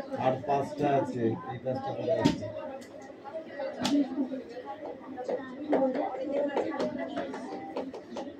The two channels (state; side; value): identical; both; correlation 1.00